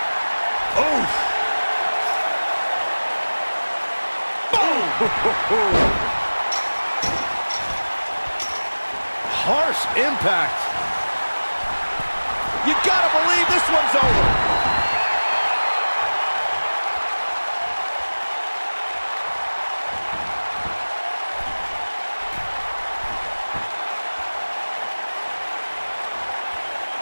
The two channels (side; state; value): both; inverted; correlation -1.00